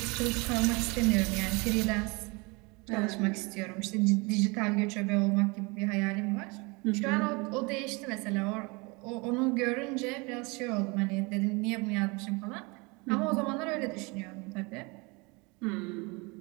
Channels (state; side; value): quieter; left; 27.7 dB